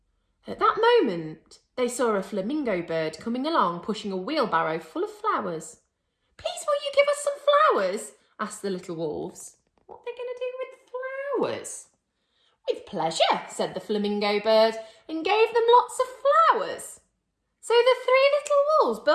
At that moment, they saw a flamingo bird coming along, pushing a wheelbarrow full of flowers. "Please, will you give us some flowers?" asked the little wolves. What are they going to do with flowers? "With pleasure," said the flamingo bird, and gave them lots of flowers. So the three little wolves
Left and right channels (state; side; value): identical; both; correlation 1.00